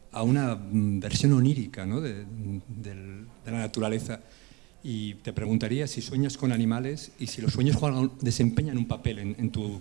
una versión onírica, ¿no? de la naturaleza. Y te preguntaría si sueñas con animales y si los sueños desempeñan un papel en tu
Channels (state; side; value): quieter; left; 25.3 dB